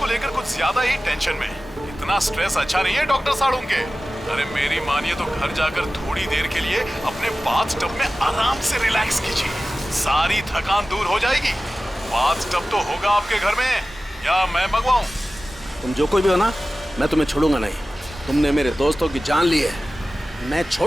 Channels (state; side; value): normal; both; correlation 0.95